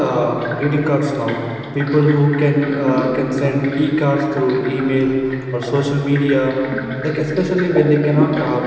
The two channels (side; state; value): both; identical; correlation 1.00